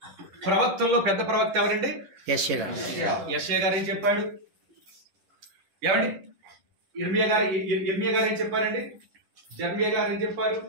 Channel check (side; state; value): left; late; 11 ms